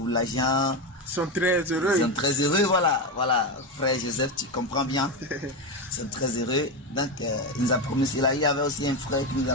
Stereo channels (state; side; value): normal; both; correlation 0.13